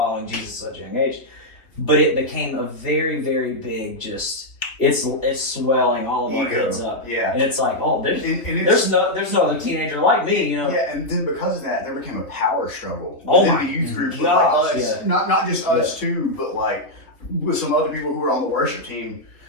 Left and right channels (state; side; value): late; right; 3.3 ms